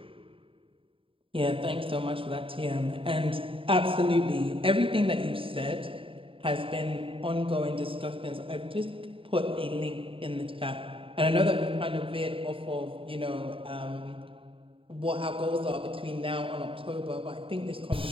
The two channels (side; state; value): left; late; 0.26 ms